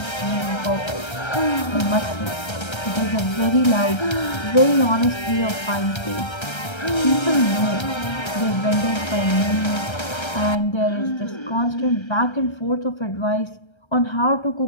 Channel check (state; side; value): late; right; 1.3 ms